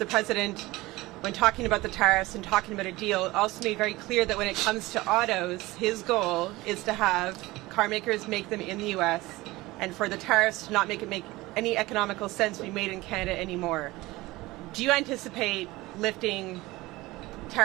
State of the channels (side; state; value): left; quieter; 19.9 dB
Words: President, when talking about the tariffs and talking about a deal, also made very clear that when it comes to autos, his goal is to have car makers make them in the U.S. and for the tariffs to not make any economical sense to be made in Canada anymore. Do you anticipate lifting